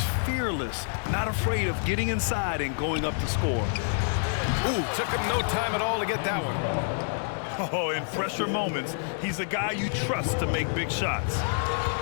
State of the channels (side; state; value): right; silent; digital silence